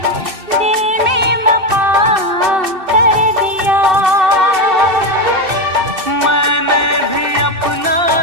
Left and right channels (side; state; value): left; late; 2.6 ms